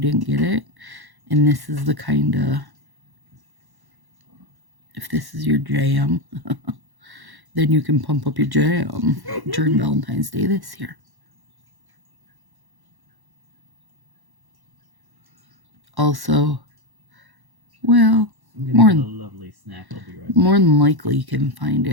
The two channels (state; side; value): late; left; 1.1 ms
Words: get it, and this is the kind of, if this is your jam, then you can pump up your jam during Valentine's Day this year. Also, well, more than, a lovely snack. I'll be right back. More than likely you can find